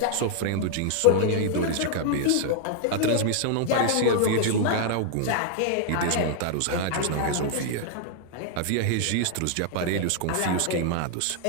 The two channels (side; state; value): both; different; correlation -0.01